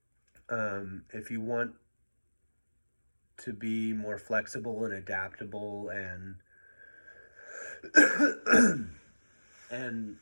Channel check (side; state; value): both; inverted; correlation -1.00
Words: If you want to be more flexible and adaptable, and